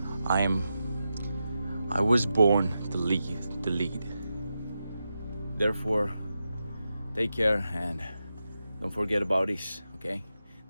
I was born to lead. Therefore, take care and don't forget about this, okay?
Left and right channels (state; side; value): inverted; both; correlation -0.89